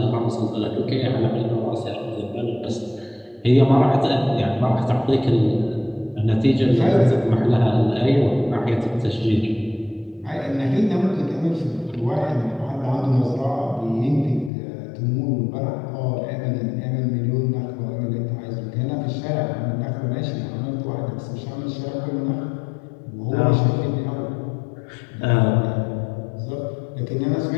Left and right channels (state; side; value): drops out; right; at 14.5 s